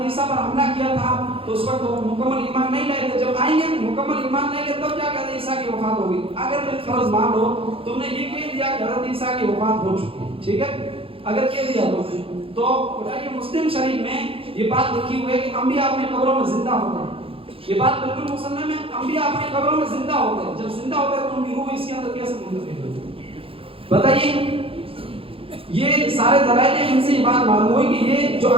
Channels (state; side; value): late; left; 0.27 ms